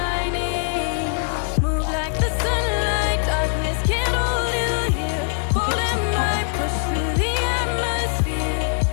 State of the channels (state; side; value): silent; right; digital silence